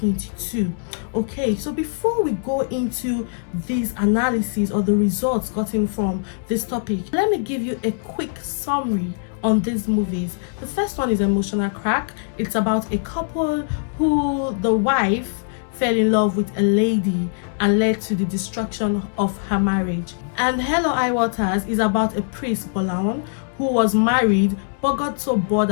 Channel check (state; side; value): silent; right; digital silence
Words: Okay, so before we go into these analyses or the results gotten from this topic, let me give you a quick summary on these movies. The first one is Emotional Crack. It's about a couple who the wife fell in love with a lady and led to the destruction of her marriage. And Hell or High Waters is about a priest, Bolawan, who was married but got so bored